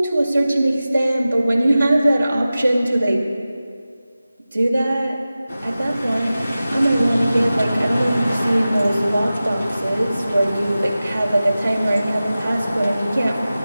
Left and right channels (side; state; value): both; inverted; correlation -0.95